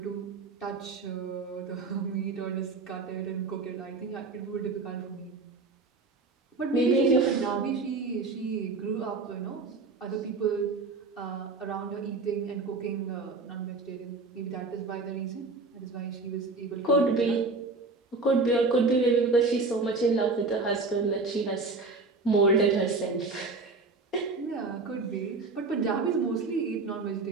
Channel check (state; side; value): quieter; left; 3.8 dB